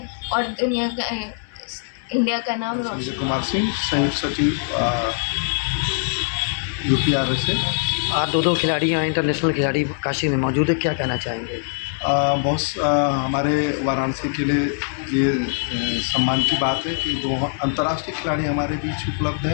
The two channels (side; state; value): right; silent; digital silence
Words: और इंडिया का नाम रोशन। संजय कुमार सिंह, संयुक्त सचिव UPRS से। आज दो खिलाड़ी यहाँ इंटरनेशनल खिलाड़ी काशी में मौजूद है, क्या कहना चाहेंगे? बहुत हमारे वाराणसी के लिए ये सम्मान की बात है कि 2 अंतर्राष्ट्रीय खिलाड़ी हमारे बीच उपलब्ध